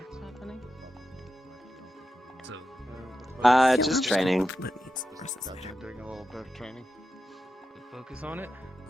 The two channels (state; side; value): normal; both; correlation 0.89